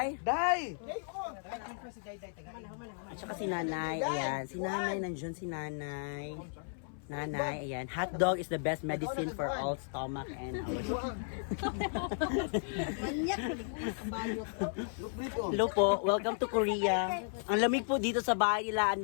Day. At saka si Nanay, ayan. Si Nanay, nandiyan si Nanay. Nanay, ayan. Hot dog is the best medicine for all stomach and Hello po, welcome to Korea. Ang lamig po dito sa bahay nila,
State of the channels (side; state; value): right; silent; 55 dB below the other